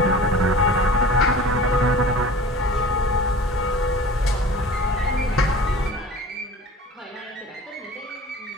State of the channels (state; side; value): normal; both; correlation 0.41